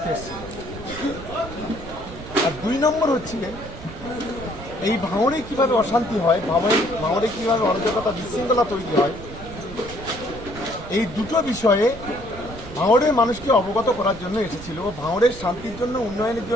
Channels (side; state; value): right; noise; rumble, 13 dB below the sound